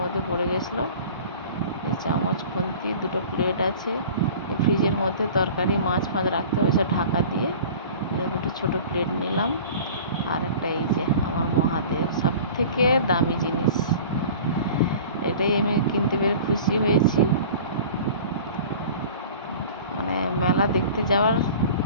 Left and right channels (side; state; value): both; inverted; correlation -0.42